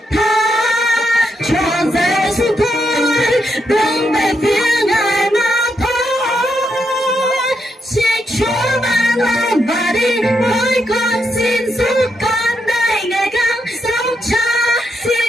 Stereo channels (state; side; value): normal; both; correlation 0.81